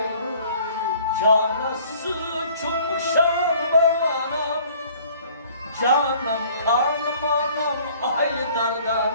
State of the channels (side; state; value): both; inverted; correlation -0.54